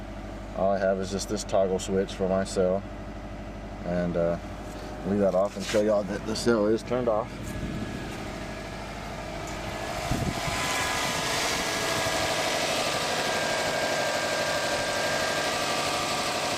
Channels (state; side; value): identical; both; correlation 1.00